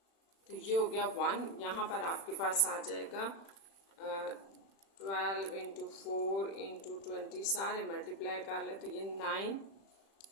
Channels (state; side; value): late; right; 36 ms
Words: तो ये हो गया 1। यहाँ पर आपके पास आ जाएगा 12 इंटू 4 इंटू 20, सारे मल्टीप्लाई कर ले तो ये 9